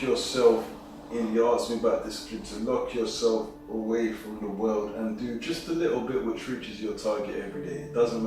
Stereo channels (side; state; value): both; identical; correlation 1.00